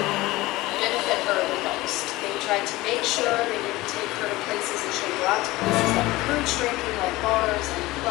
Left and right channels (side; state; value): right; quieter; 19.4 dB